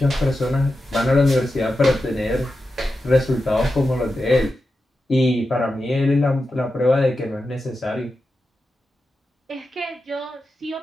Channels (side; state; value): both; normal; correlation 0.90